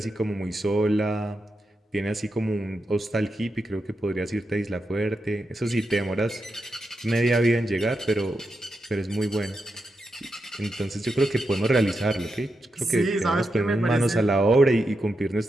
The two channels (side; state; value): both; normal; correlation 0.87